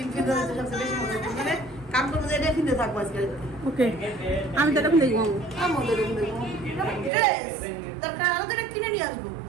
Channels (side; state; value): left; drops out; at 7.1 s